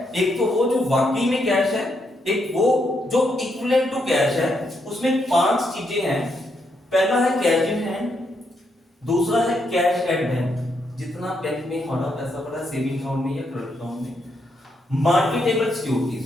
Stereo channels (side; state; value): both; normal; correlation 0.78